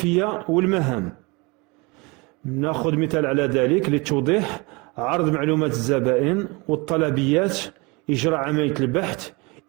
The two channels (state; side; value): quieter; left; 27.0 dB